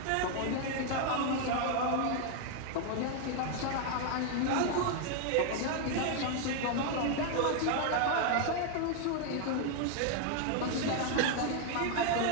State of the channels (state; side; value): different; both; correlation 0.00